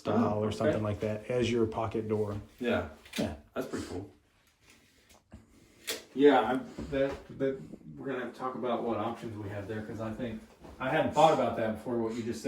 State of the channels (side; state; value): both; identical; correlation 1.00